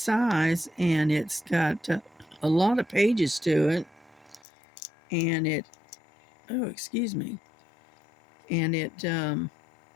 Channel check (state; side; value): drops out; right; at 4.4 s